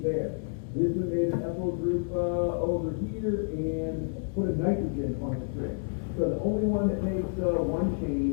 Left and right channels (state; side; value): silent; right; digital silence